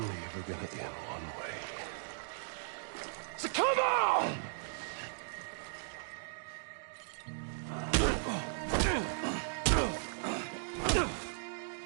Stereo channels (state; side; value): silent; left; digital silence